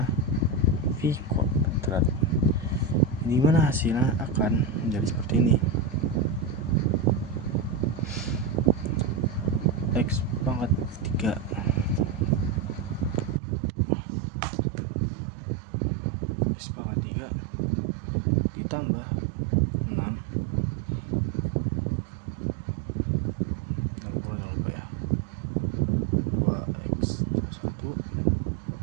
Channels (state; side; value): drops out; left; at 13.4 s